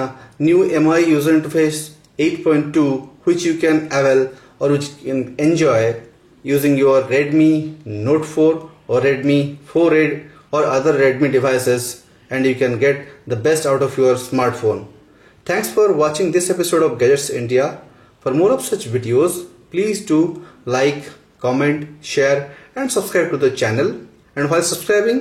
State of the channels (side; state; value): both; identical; correlation 1.00